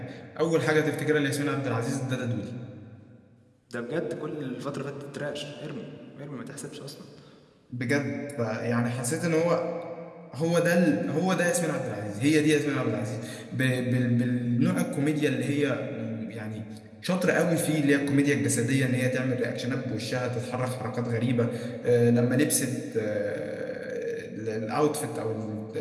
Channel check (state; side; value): identical; both; correlation 1.00